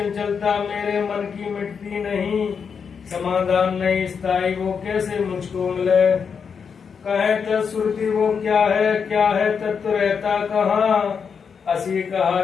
मेरे मन की मिटती नहीं, समाधान नहीं स्थायी वो कैसे मुझको मिले। कहे तत्श्रुति वो क्या है तत्व रहता कहाँ। असी कहा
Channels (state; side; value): quieter; right; 6.3 dB